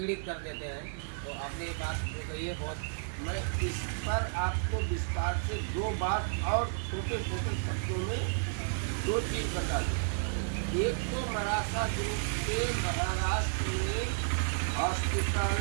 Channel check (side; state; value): left; silent; digital silence